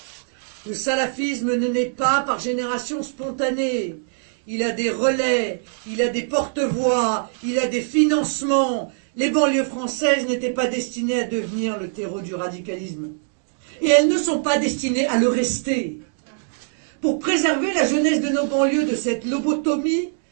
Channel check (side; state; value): left; silent; digital silence